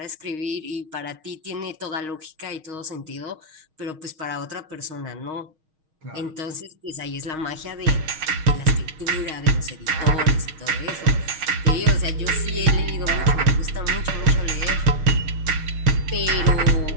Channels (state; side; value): late; left; 6.4 ms